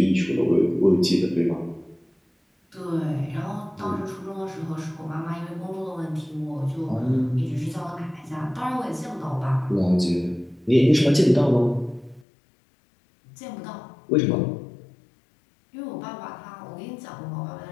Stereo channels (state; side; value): drops out; right; at 12.2 s